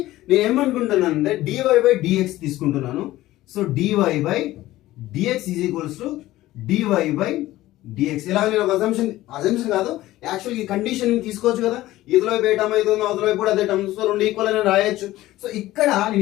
నేను ఏమనుకుంటున్నాను అంటే dy/dx తీసుకుంటున్నాను. So dy/dx is equals to dy/dx. ఇలా నేను ఒక అజంప్షన్ కాదు, యాక్చువల్ ఈ కండిషన్ తీసుకోవచ్చు కదా, ఇదిలో వైపు ఏ టర్మ్ అయితే ఉందో అవతల వైపు కూడా అదే టర్మ్, సో రెండు ఈక్వల్ అని రాయొచ్చు. సో ఇక్కడ నేను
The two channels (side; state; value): right; quieter; 16.1 dB